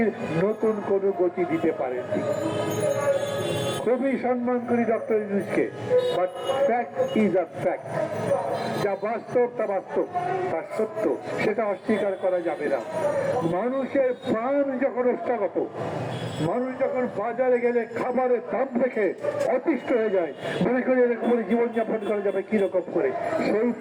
নতুন কোনো গতি দিতে পারেননি। খুবই সম্মান করি ডক্টর ইউনূসকে, but fact is a fact. যা বাস্তব তা বাস্তব, তা সত্য, সেটা অস্বীকার করা যাবে না। মানুষের প্রাণ যখন অষ্টাগত, মানুষ যখন বাজারে গেলে খাবারের দাম দেখে অতিষ্ঠ হয়ে যায়, মনে করি এরকম করে জীবনযাপন করা যাবে কিরকম করে, সেই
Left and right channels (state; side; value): identical; both; correlation 1.00